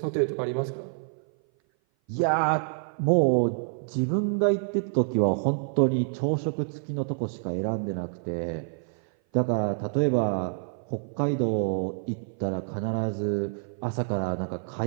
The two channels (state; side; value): silent; left; 57 dB below the other